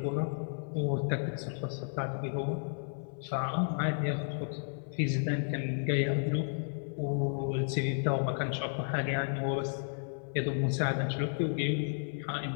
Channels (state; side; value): silent; right; 56 dB below the other